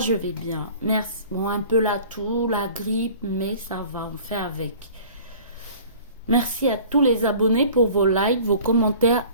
vais bien, merci. Bon, un peu la toux, la grippe, mais ça va, on fait avec. Merci à tous les abonnés pour vos likes, vos commentaires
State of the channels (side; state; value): both; inverted; correlation -0.46